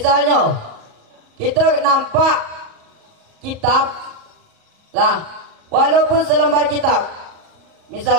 kita nampak kitab, lah, walaupun selembar kitab.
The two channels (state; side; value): late; left; 38 ms